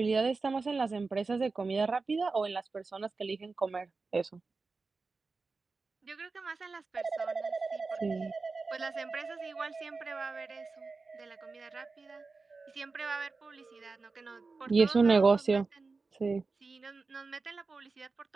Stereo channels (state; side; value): quieter; left; 4.1 dB